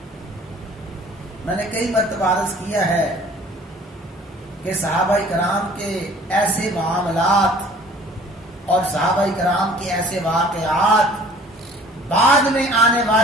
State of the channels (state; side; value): normal; both; correlation 0.51